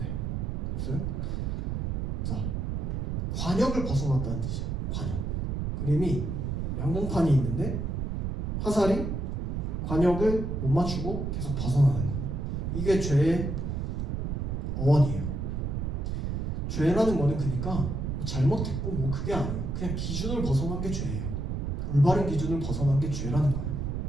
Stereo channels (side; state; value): right; noise; rumble, 2 dB below the sound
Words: 없어요? 자, 관역을 벗어났다는 뜻이에요. 관역. 그림이 양봉판이 있는데 화살이 관역을 못 맞추고 계속 벗어나는 거. 이게 죄의 어원이에요. 죄라는 거는 그러니까 잘못했고 뭐 그게 아니에요. 그냥 기준을 벗어난 게 죄예요. 올바른 기준을 벗어난 게 죄라는 거예요.